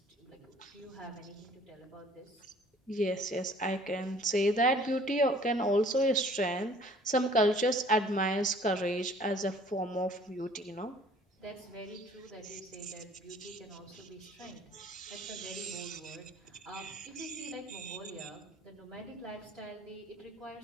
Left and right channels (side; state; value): both; normal; correlation 0.54